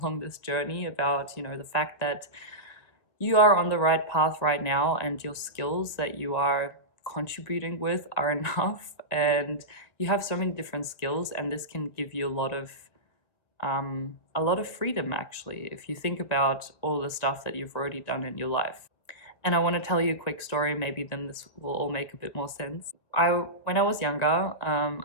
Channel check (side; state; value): right; late; 1.9 ms